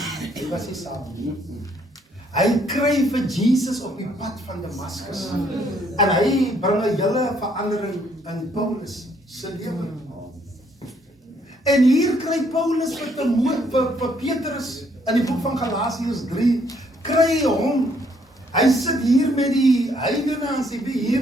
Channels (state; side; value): normal; both; correlation 0.68